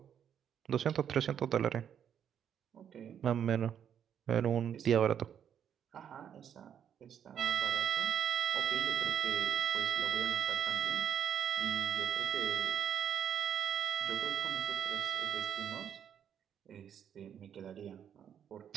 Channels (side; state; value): left; quieter; 8.8 dB